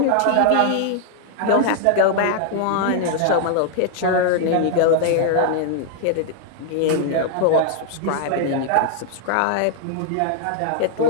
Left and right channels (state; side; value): different; both; correlation 0.00